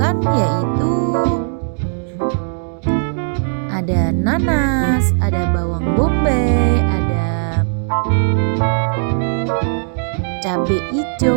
yaitu ada nanas, ada bawang bombay, ada cabai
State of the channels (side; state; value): left; silent; 68 dB below the other